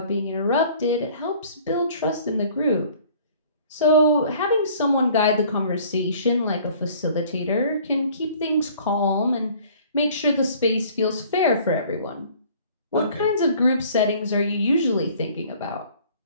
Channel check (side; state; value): both; inverted; correlation -0.53